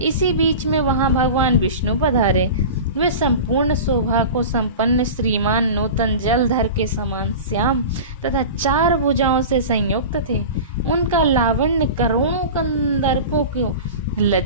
बीच में वहां भगवान विष्णु पधारे। वे संपूर्ण शोभा को संपन्न श्रीमान नूतन जलधर के समान श्याम तथा 4 भुजाओं से संयुक्त थे। उनका लावण्य करोड़ों कंदर्पों को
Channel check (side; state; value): both; inverted; correlation -0.32